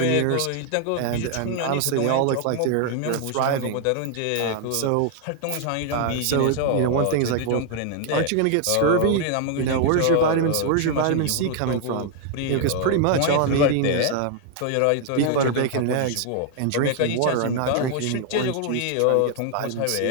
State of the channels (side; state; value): both; different; correlation 0.00